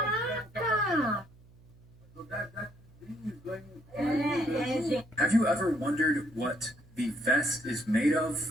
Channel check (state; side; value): noise; right; hum, 25 dB below the sound